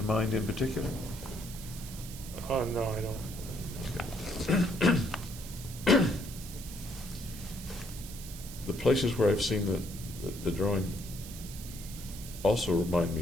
mind in particular? No, I don't. The places where I've seen the drawing also remind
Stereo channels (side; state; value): right; noise; hiss, 13 dB below the sound